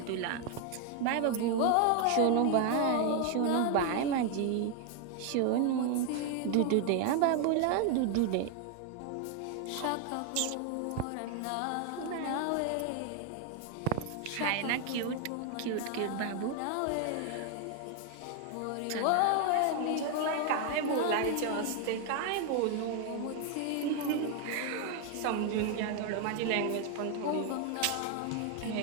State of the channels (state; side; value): different; both; correlation 0.01